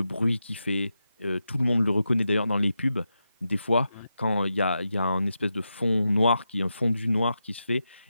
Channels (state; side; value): inverted; both; correlation -0.89